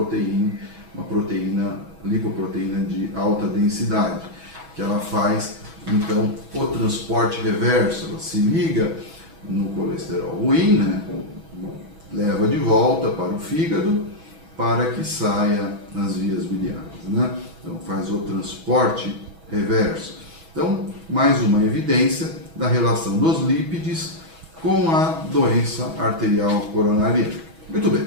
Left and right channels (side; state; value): left; late; 6.2 ms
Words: uma lipoproteína de alta densidade, que ela faz então o transporte reverso, ela se liga no colesterol ruim, né? Leva de volta para o fígado para que saia nas vias biliares, né? Então faz o transporte reverso. Então, mais uma evidência da relação dos lípides com a doença arterial coronariana. Muito bem,